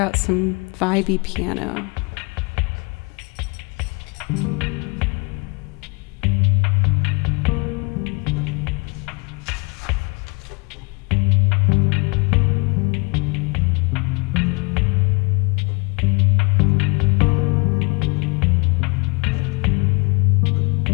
out some vibey piano.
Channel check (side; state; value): right; quieter; 30.7 dB